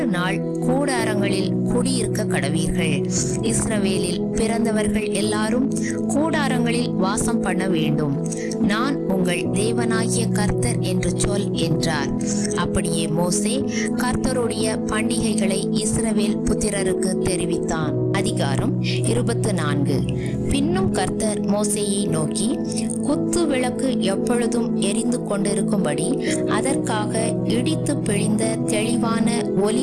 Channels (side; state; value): both; identical; correlation 1.00